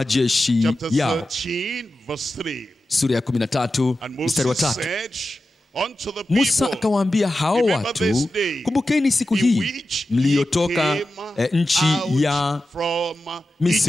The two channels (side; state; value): both; normal; correlation 0.92